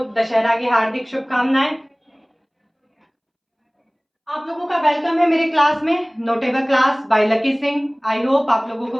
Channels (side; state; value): both; identical; correlation 1.00